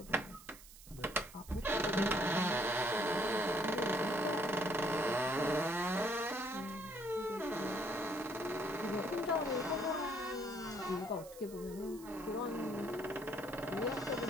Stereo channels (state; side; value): noise; right; hiss, 19 dB below the sound